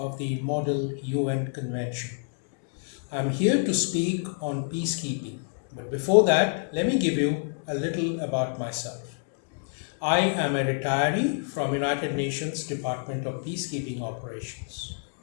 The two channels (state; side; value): silent; right; 59 dB below the other